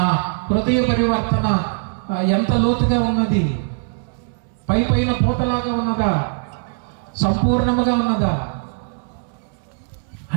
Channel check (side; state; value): left; silent; digital silence